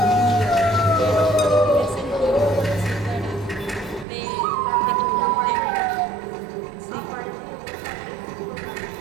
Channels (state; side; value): drops out; left; at 4.0 s